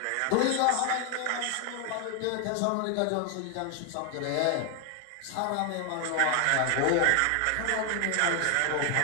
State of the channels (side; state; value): both; different; correlation 0.00